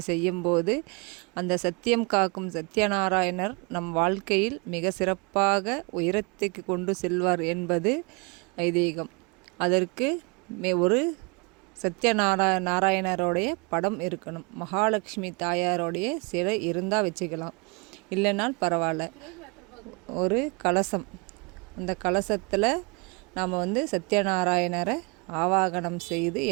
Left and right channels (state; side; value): quieter; left; 31.0 dB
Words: செய்யும்போது அந்த சத்தியம் காக்கும் சத்யநாராயணர் நம் வாழ்க்கையில் மிக சிறப்பாக உயரத்துக்கு கொண்டு செல்வார் என்பது ஐதீகம். அதற்கு ஒரு நாராயணருடைய படம் இருக்கணும். மகாலட்சுமி தாயாரோடைய சிலை இருந்தால் வச்சுக்கலாம், இல்லைனால் பரவாயில்ல. ஒரு கலசம், அந்த கலசத்தில் நாம் சத்யநாராயணரை ஆவாகனம் செய்து